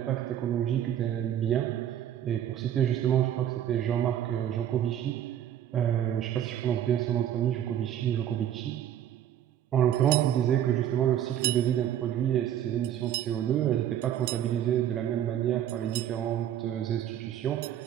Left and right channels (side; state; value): left; quieter; 10.7 dB